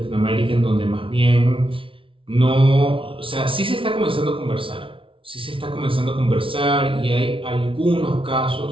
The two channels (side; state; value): left; late; 0.25 ms